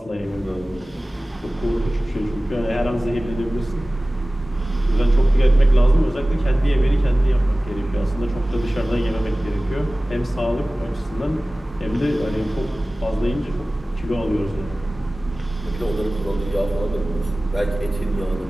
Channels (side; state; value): both; normal; correlation 0.97